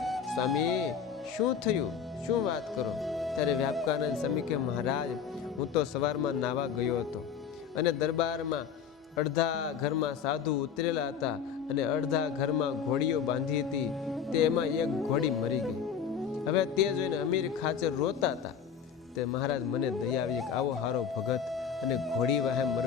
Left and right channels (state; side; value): quieter; right; 7.3 dB